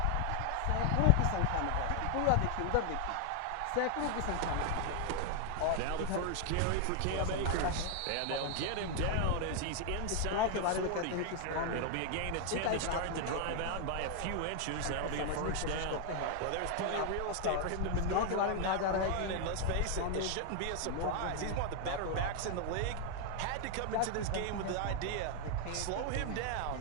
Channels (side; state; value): both; different; correlation 0.00